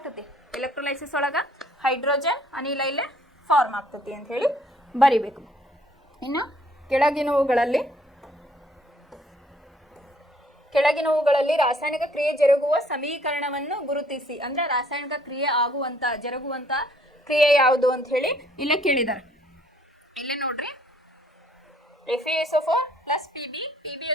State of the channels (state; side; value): normal; both; correlation 0.62